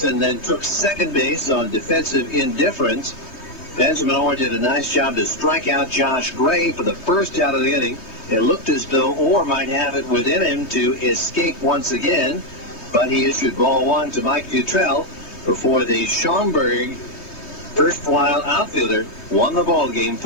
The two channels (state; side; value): late; right; 3.3 ms